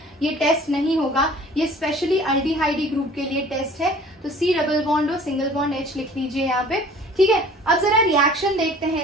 ये टेस्ट नहीं होगा, ये स्पेशली अल्डिहाइडी ग्रुप के लिए टेस्ट है। तो C double bond O single bond H लिख लीजिए यहाँ पे, ठीक है। अब जरा रिएक्शन देखते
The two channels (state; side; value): normal; both; correlation 0.49